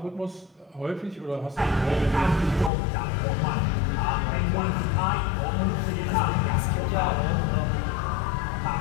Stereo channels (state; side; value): drops out; right; at 2.7 s